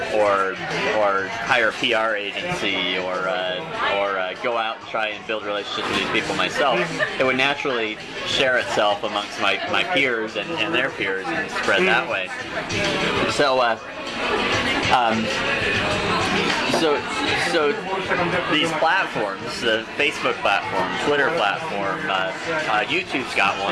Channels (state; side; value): identical; both; correlation 1.00